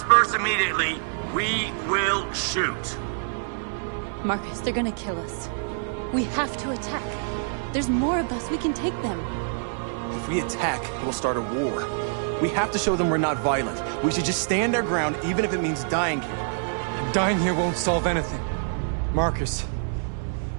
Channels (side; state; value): left; silent; 57 dB below the other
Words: immediately, we will shoot. Marcus, they're gonna kill us. We have to attack. There's more of us. We can take them. If we attack, we'll start a war. We have to show them we're not violent. We should just stand our ground, even if it means dying here. Dying here won't solve anything. Marcus,